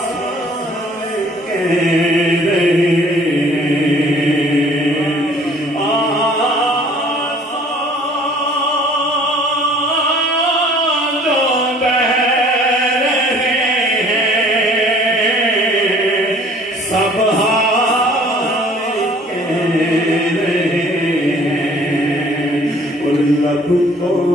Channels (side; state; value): both; normal; correlation 0.54